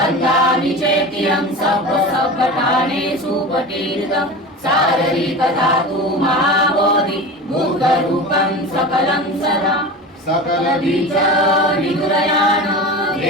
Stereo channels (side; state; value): both; normal; correlation 0.30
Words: चेत्यं सप्तसप्तठानेषु पटीरितं शारीरिकधातु महाबोधि बुद्धरूपं सकलं सदा सकलबीज विदुरयान